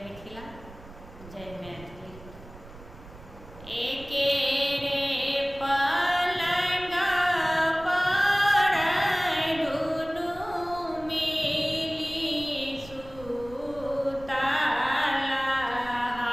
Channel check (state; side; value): noise; right; rumble, 18 dB below the sound